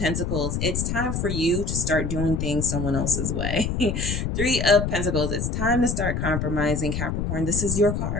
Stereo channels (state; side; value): noise; left; rumble, 1 dB below the sound